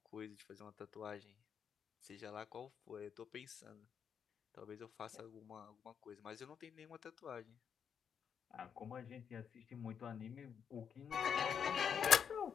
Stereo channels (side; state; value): right; quieter; 7.5 dB